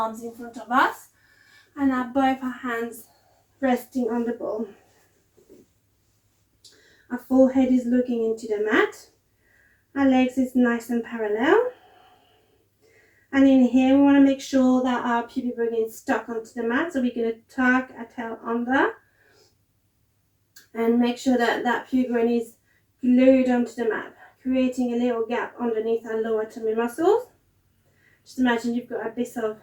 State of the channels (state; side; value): identical; both; correlation 1.00